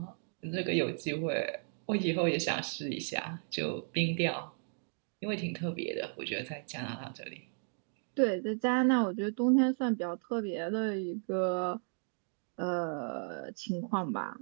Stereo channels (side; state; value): left; silent; 55 dB below the other